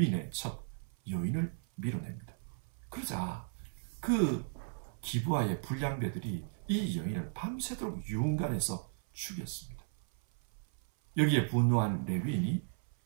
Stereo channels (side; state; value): left; silent; 54 dB below the other